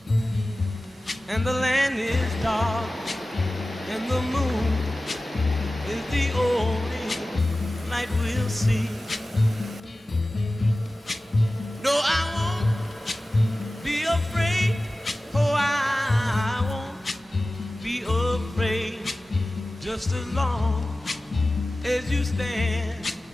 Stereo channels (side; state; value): both; normal; correlation 0.96